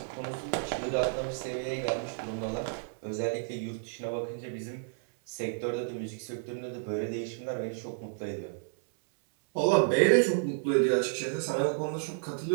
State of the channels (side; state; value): left; silent; digital silence